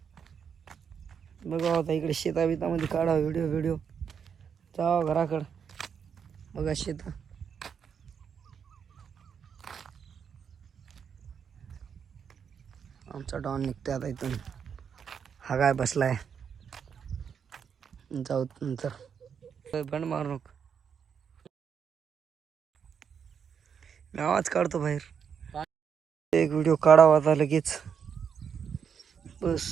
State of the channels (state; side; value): quieter; left; 7.2 dB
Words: बघा आता इकडे शेताबितामध्ये काढा व्हिडिओ जावा घराकडं बघा शेत. आमचा डॉन निघतोय आता इथून. हा काय बसलाय जाऊ नंतर बंड मारू नको. मी आवाज काढतो बाहेर. एक व्हिडिओ काढावा आता लगेच बस.